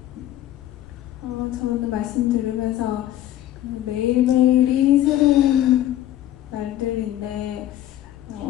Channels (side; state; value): right; quieter; 13.1 dB